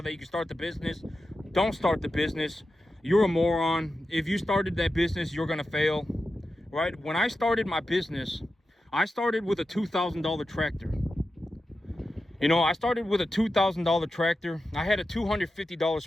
that you can start the business. don't start the business. You're a moron. If you started that business, you're gonna fail, right? When I started my business, I started with a $2,000 tractor. I started with a $2,000 tractor. I had a $250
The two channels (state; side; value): normal; both; correlation 0.91